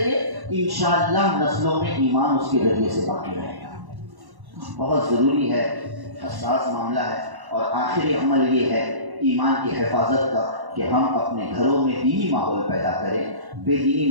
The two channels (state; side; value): late; left; 1.1 ms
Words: گے، انشاءاللہ نسلوں میں ایمان اس کے ذریعے سے باقی رہے گا۔ بہت ضروری ہے، حساس معاملہ ہے، اور آخری عمل یہ ہے ایمان کی حفاظت کا کہ ہم اپنے گھروں میں دینی ماحول پیدا کریں، بے دینی